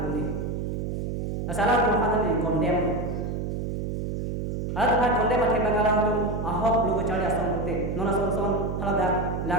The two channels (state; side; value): noise; right; hum, 3 dB below the sound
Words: pu ni asala tu hana ni condemn ala tu condemn ate bangala tu ahok logo chale asong pute nona son hala da